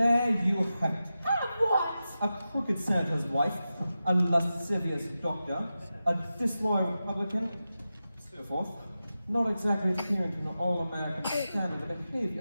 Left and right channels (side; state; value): both; inverted; correlation -0.92